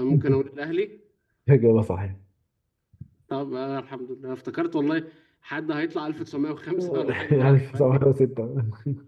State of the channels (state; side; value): identical; both; correlation 1.00